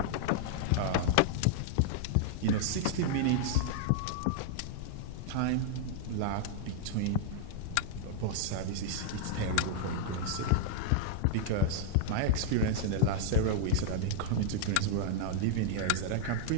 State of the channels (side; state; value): both; different; correlation -0.01